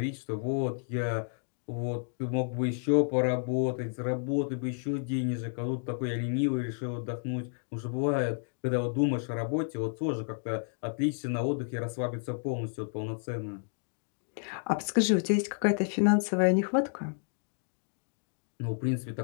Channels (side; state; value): right; silent; digital silence